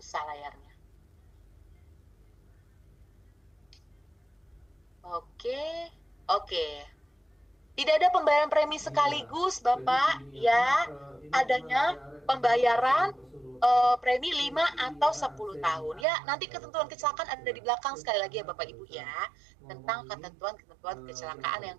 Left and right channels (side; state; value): left; drops out; at 16.1 s